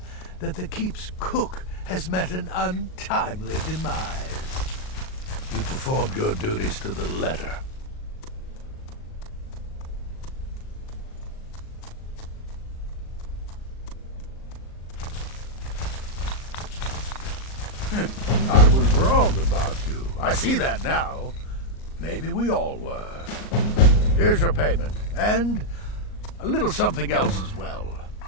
that the keep's cook has met an untimely demise. You performed your duties to the letter. I was wrong about you. I see that now. Maybe we all were. Here's your payment, and a little something else as well,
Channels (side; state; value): right; late; 38 ms